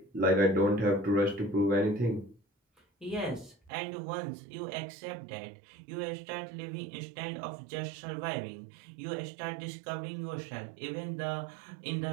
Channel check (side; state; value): left; drops out; at 3.7 s